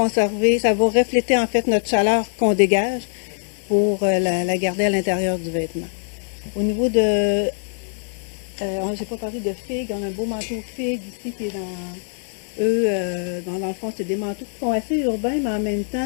ça va refléter en fait notre chaleur qu'on dégage pour la garder à l'intérieur du vêtement. Au niveau de... j'ai pas parlé de figues, on a un beau manteau figue ici qui est dans... Eux, dans le fond, c'est des manteaux qui sont assez urbains, mais en même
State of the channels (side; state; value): right; silent; 64 dB below the other